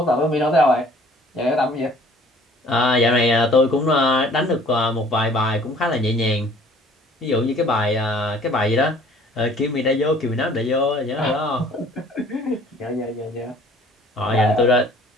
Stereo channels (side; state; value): both; normal; correlation 0.53